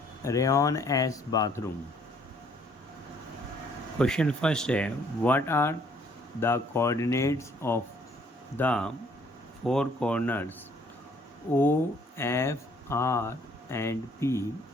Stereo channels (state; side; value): normal; both; correlation 0.62